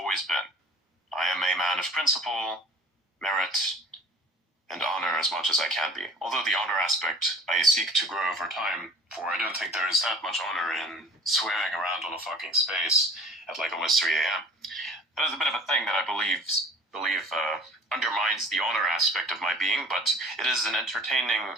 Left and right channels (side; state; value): both; normal; correlation 0.46